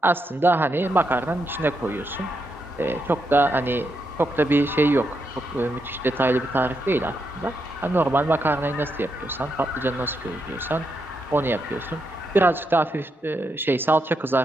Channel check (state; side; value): normal; both; correlation 0.82